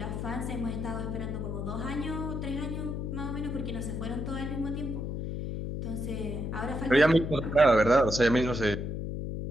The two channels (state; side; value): noise; left; hum, 4 dB below the sound